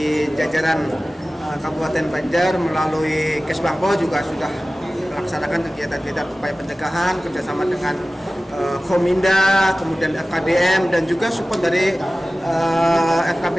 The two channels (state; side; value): normal; both; correlation 0.97